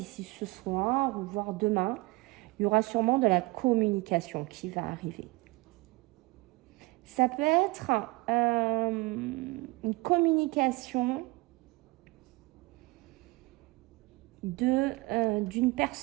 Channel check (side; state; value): left; quieter; 23.8 dB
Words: ce soir, ou voire demain, il y aura sûrement de la communication qui va arriver. Ça peut être une communication d'une